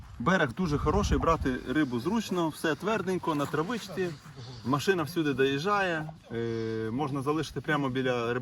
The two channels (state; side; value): identical; both; correlation 1.00